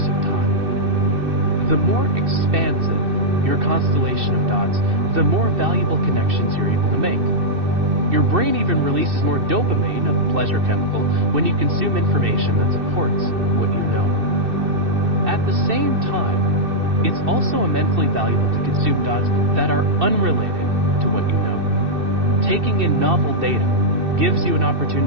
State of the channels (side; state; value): left; late; 2.6 ms